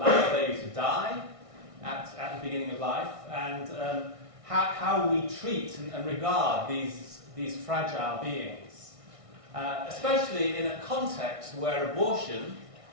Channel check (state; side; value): late; left; 1.6 ms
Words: a baby to die at the beginning of life, and how we treat and regard these fragile beings, especially in a context where abortion,